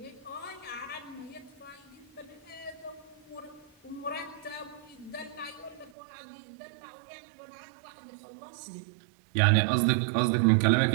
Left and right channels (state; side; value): drops out; left; at 5.9 s